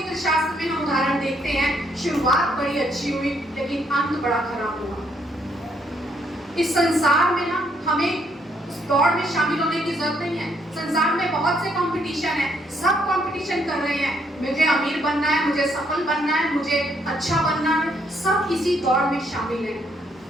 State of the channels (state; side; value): normal; both; correlation 0.71